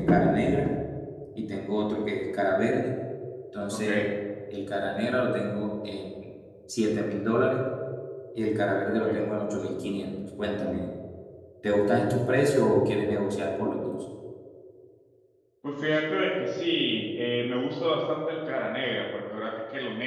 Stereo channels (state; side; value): identical; both; correlation 1.00